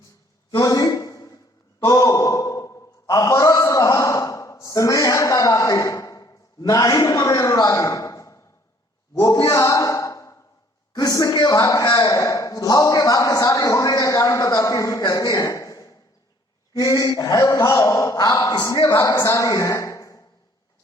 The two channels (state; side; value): normal; both; correlation 0.60